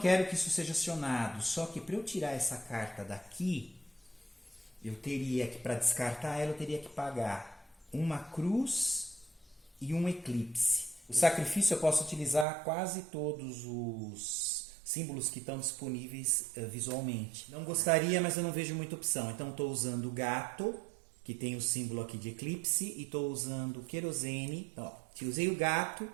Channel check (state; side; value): drops out; left; at 12.5 s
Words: que isso seja acionado. Só que para eu tirar essa carta daqui, eu teria que, para descartar ela, eu teria que pagar uma cruz e um eclipse. O sacrifício eu posso utilizar quase todos os símbolos que estão disponíveis visualmente. Não gostaria, mas eu não vejo muita opção. Então estou usando o gato, que tem o símbolo aqui de eclipse, e estou usando o querosene. Ó, se usei o gato,